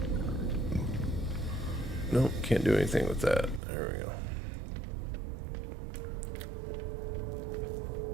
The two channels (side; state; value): left; drops out; at 3.6 s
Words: Nope, can't do anything with that. There we go.